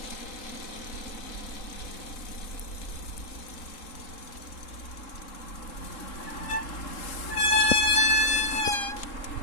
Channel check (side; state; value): right; late; 3.8 ms